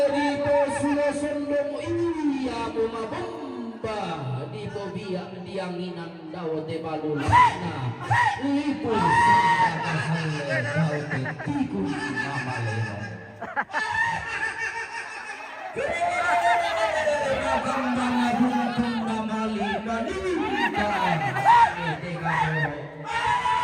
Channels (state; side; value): identical; both; correlation 1.00